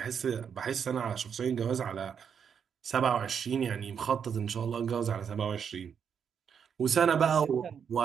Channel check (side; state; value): left; quieter; 7.3 dB